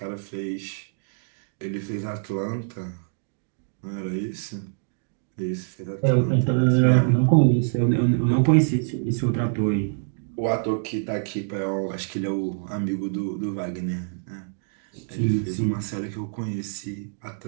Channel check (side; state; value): left; silent; digital silence